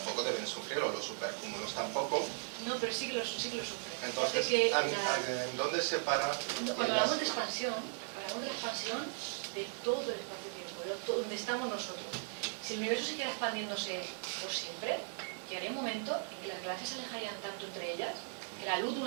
deben sufrirlo, los supercúmulos tampoco. No, pero sí que lo sufren. Entonces, ¿en dónde se para? Cuando hablamos de expansión, hablamos de la expansión de todo el espacio-tiempo, de donde estamos nosotros. Si el universo siguiera expandiéndose por siempre, llegaría un momento en que las galaxias se alejarían tanto entre ellas que la luz de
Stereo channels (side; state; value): left; silent; 53 dB below the other